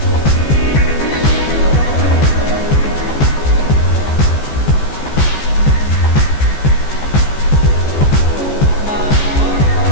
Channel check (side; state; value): right; late; 14 ms